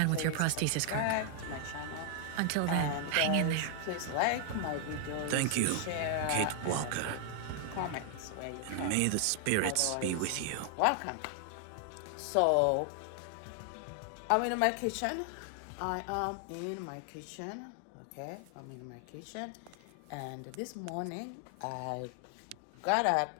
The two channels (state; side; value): different; both; correlation 0.00